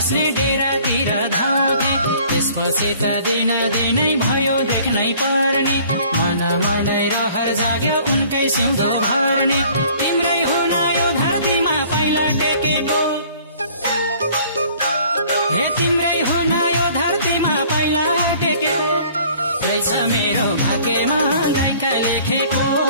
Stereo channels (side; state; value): both; inverted; correlation -0.54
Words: डेरातिर धाउँथे त्यसपछि त दिन दिनै भयो देख्नै पर्ने मनै रहर जाग्यो उनकै सिउँदो भर्ने तिम्रै हुन यो धरतीमा पाइला टेकेको हे तिम्रै हुन यो धरतीमा पाइला टेकेको रहेछ मेरो भाग्यमा गायका लेखेको